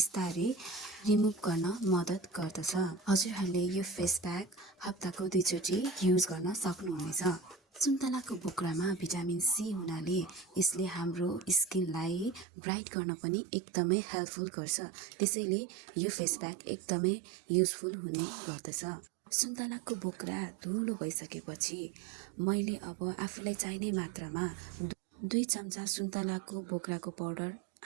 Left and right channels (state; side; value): drops out; left; at 12.5 s